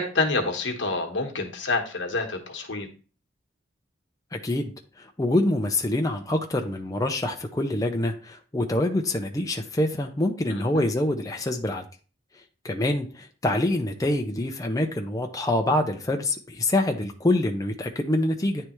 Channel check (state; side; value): normal; both; correlation 0.59